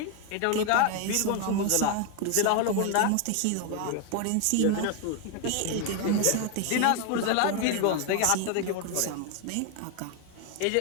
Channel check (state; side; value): different; both; correlation 0.01